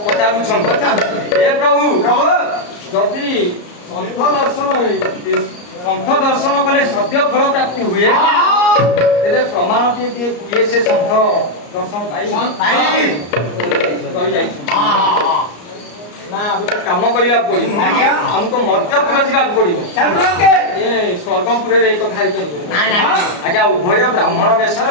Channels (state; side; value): late; right; 34 ms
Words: ହେ ପ୍ରଭୁ ଯଦି ସନ୍ଥ ଦର୍ଶନ କଲେ ସଦ୍ୟ ଫଳ ପ୍ରାପ୍ତି ହୁଏ ତେବେ ପ୍ରମାଣ ଟିକେ କିଏ ସେ ସନ୍ଥ ଦର୍ଶନ ପାଇ ନା ଗୋଟେ କାମ କରିବାକୁ ପଡିବ ଆମକୁ ମର୍ତ୍ତ୍ୟପୁର ଯିବାକୁ ପଡିବ ଏ ସ୍ୱର୍ଗପୁରରେ ଏଇ କଥା ହେଇପାରିବ ଆଜ୍ଞା ଉଭୟ ବ୍ରାହ୍ମଣ ବେଶରେ